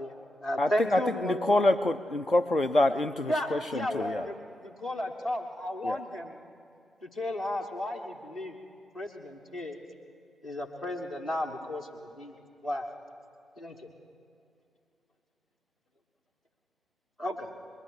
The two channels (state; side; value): normal; both; correlation 0.87